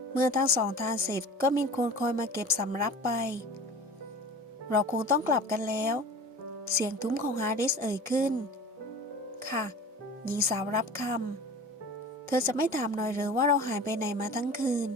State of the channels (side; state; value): both; normal; correlation 0.39